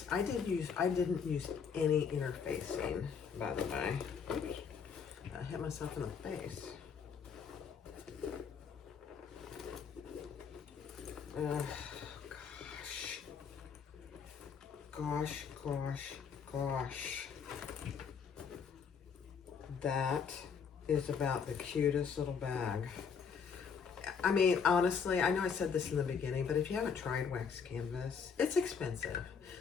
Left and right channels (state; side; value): quieter; right; 6.4 dB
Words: I didn't use any interfacing, by the way. Oops. I hit myself in the face. Gosh. That is about the cutest little bag. I mean, honestly, I know I said this in the beginning, but if you haven't tried wax canvas, it's expensive.